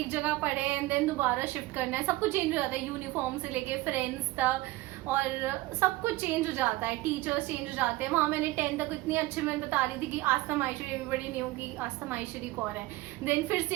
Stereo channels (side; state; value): left; quieter; 19.1 dB